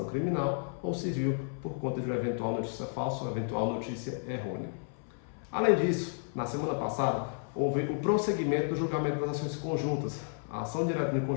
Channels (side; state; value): right; silent; 56 dB below the other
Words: criminal ou civil por conta de uma eventual notícia falsa ou eventual notícia errônea. Além disso, na semana passada, houve o prosseguimento do julgamento das ações conjuntas, a ação direta de